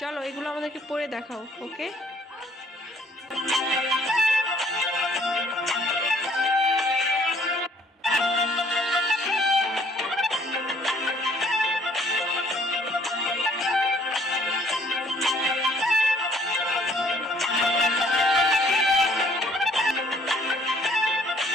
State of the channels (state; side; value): normal; both; correlation 0.60